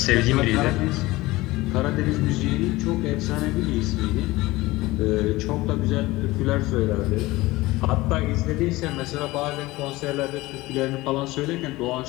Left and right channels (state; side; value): quieter; right; 19.7 dB